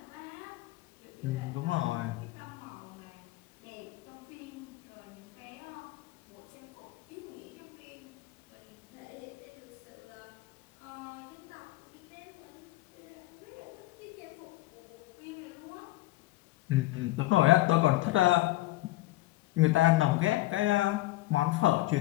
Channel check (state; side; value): quieter; right; 17.7 dB